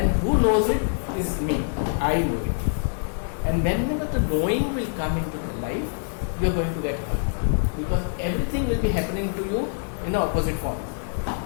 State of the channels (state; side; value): silent; right; digital silence